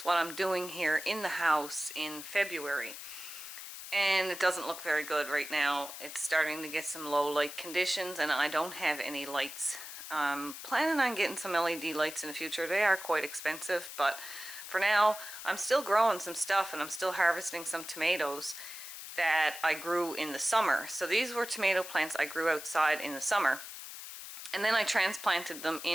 what I'm doing here in the house in February. And it doesn't look very good right now. It's starting to get some low light conditions and I don't have any lights. Planning on getting some LED lights in the future. They are quite expensive, but for now, I'm still growing some stuff and I'm still harvesting some tomatoes that I grew in the summer. So these were tomato plants I grew outside in the summer. And then I transplanted them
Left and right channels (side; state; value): left; noise; hiss, 11 dB below the sound